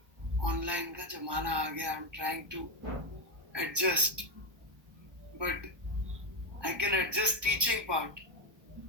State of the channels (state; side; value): late; left; 1.2 ms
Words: ऑनलाइन का जमाना आ गया. I am trying to adjust, but I can adjust teaching part,